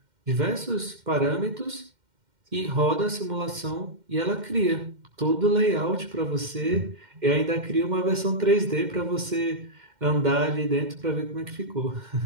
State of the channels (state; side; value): late; left; 2.1 ms